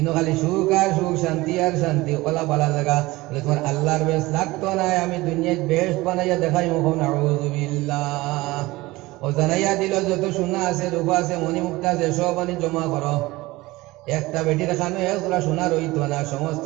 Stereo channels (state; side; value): quieter; left; 20.1 dB